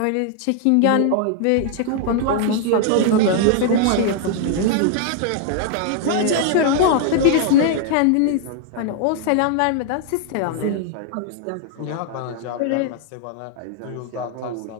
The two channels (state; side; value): different; both; correlation 0.00